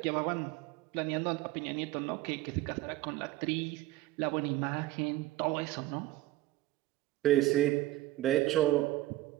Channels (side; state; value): left; quieter; 16.4 dB